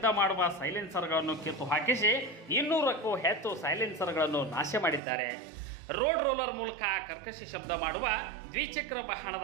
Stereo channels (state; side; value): drops out; left; at 5.0 s